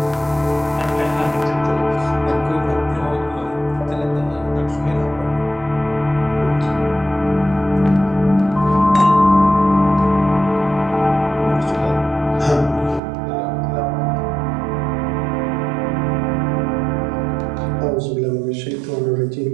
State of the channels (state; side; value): drops out; left; at 13.0 s